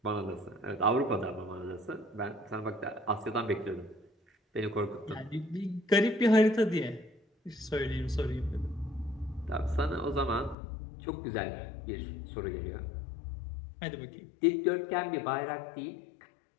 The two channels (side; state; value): right; drops out; at 10.6 s